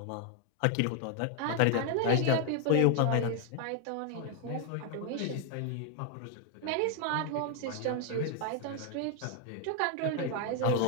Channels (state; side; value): different; both; correlation 0.00